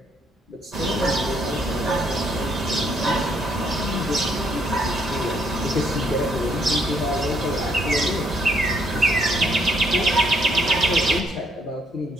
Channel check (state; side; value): normal; both; correlation 0.69